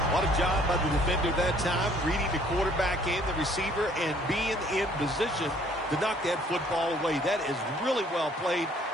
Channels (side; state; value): both; normal; correlation 0.60